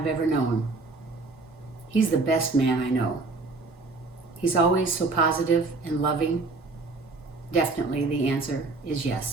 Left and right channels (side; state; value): left; quieter; 3.6 dB